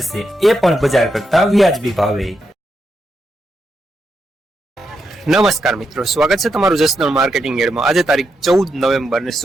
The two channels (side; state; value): both; normal; correlation 0.83